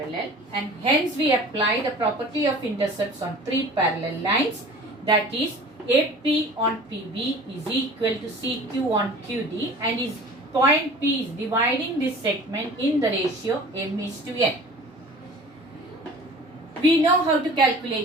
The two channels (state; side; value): normal; both; correlation 0.43